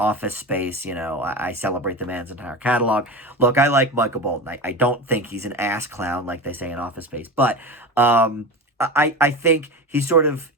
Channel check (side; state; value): both; normal; correlation 0.26